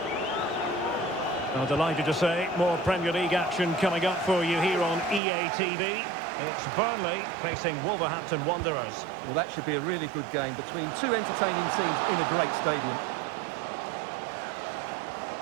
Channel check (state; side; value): drops out; left; at 5.2 s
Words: I'm delighted to say more Premier League action coming up for you here on EA TV. It's Burnley facing Wolverhampton Wanderers. Well, that should be a really good game between two entertaining teams in a great stadium.